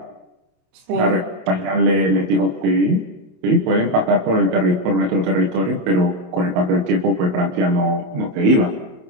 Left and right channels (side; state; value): left; late; 28 ms